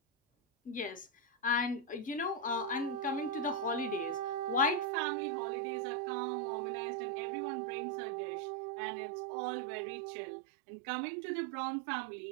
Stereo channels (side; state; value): left; drops out; at 4.9 s